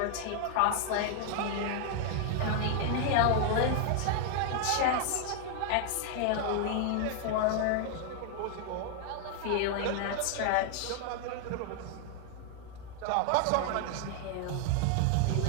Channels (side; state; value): both; different; correlation 0.00